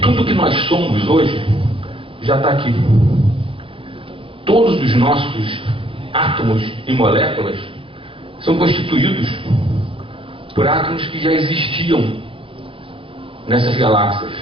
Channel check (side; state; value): left; late; 0.26 ms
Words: que nós somos hoje já está aqui. Todos os nossos átomos e moléculas são constituídos por átomos que já existiam nessas galáxias.